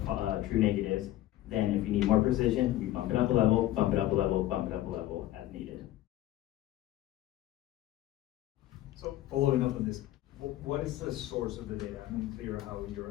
true negatives. Then if you need more precision, we bump it up a level, bump it up a level, bump it up a level as needed. So following up on this, what is the source of the data? I'm unclear how you're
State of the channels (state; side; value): quieter; right; 14.7 dB